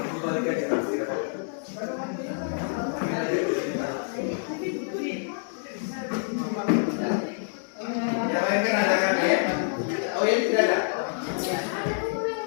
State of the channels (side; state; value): right; silent; digital silence